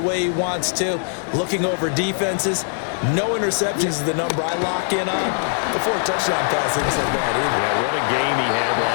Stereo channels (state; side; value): silent; right; 65 dB below the other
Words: way he wants to, looking over defenses. No interceptions is the number I lock in on. Before a touchdown pass isn't so bad either. Yeah, what a game he had